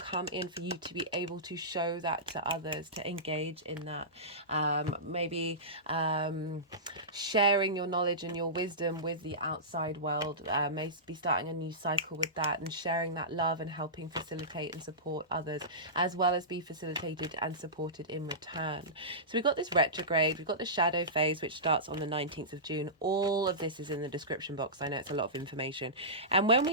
in for you to be able to show that to others, to engage in that. Maybe sharing your knowledge and your wisdom with the outside world, may be starting a new cycle with that, and sharing that love and helping facilitate and support others, as well as be facilitated and supported in return. So we've got this retrograde, we've got the shadow phase, which starts on the 19th of June. All of this is in the description box. I know it's a lot of information. And when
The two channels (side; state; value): both; normal; correlation -0.19